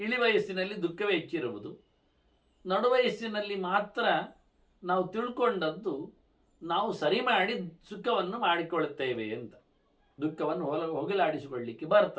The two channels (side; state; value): both; identical; correlation 1.00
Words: ವಯಸ್ಸಿನಲ್ಲಿ ದುಃಖವೇ ಹೆಚ್ಚಿರುವುದು, ನಡುವಯಸ್ಸಿನಲ್ಲಿ ಮಾತ್ರ ನಾವು ತಿಳ್ಕೊಂಡದ್ದು ನಾವು ಸರಿ ಮಾಡಿ ಸುಖವನ್ನು ಮಾಡಿಕೊಳ್ಳುತ್ತೇವೆ ಅಂತ, ದುಃಖವನ್ನು ಹೋಗಲಾಡಿಸಿಕೊಳ್ಳಿಕ್ಕೆ